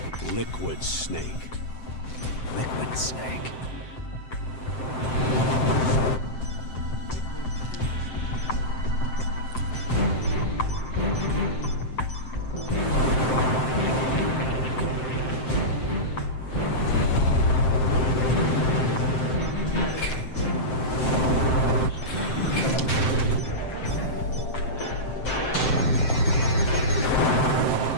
Liquid Snake. Liquid Snake.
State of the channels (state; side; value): late; right; 7.7 ms